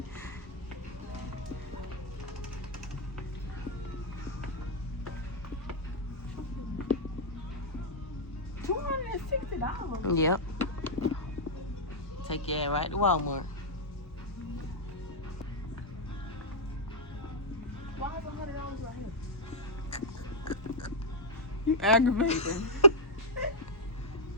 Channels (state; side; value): normal; both; correlation -0.06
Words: $260. Yep. Take your ass right to Walmart. Why is $100 right here? You aggravating.